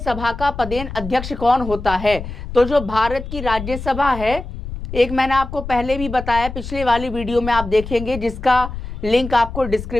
का पदेन अध्यक्ष कौन होता है? तो जो भारत की राज्यसभा है, एक मैंने आपको पहले भी बताया, पिछले वाली वीडियो में आप देखेंगे, जिसका लिंक आपको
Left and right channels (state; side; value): noise; left; rumble, 9 dB below the sound